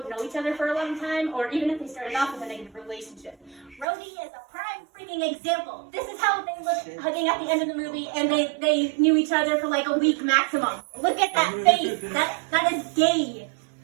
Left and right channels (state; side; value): drops out; left; at 3.9 s